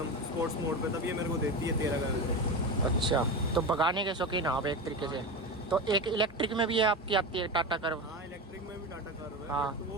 स्पोर्ट्स मोड पे, तब ये मेरे को देती है 13 का एवरेज। अच्छा, तो भगाने के शौकीन आप एक तरीके से। तो एक इलेक्ट्रिक में भी है आपकी आती है टाटा कर्व? हाँ, इलेक्ट्रिक में भी टाटा कर्व है। हाँ। तो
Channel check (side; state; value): both; normal; correlation 0.22